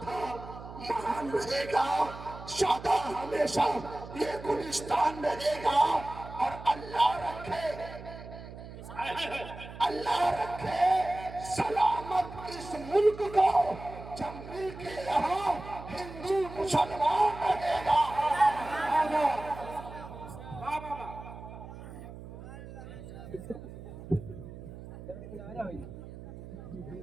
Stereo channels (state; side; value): noise; right; hum, 13 dB below the sound